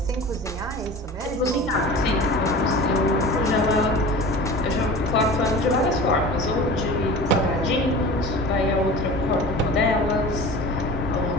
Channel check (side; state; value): both; normal; correlation 0.37